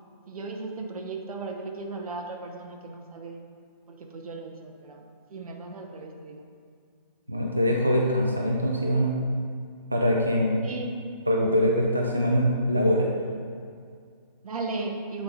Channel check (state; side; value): inverted; both; correlation -0.66